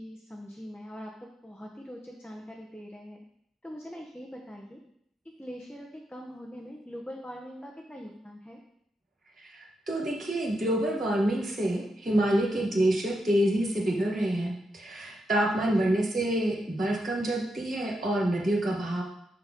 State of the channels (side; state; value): both; normal; correlation 0.84